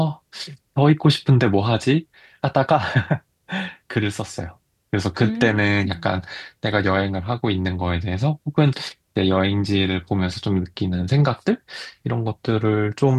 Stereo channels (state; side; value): identical; both; correlation 1.00